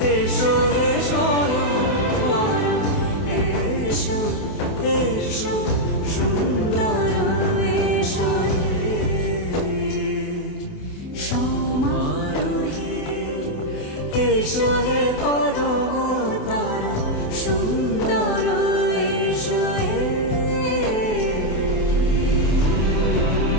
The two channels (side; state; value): right; late; 28 ms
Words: এসো হে স্বয়ং পরম এসো এসো সুন্দর এসো হে সমারোহে এসো হে পরম তর সুন্দর এসো হে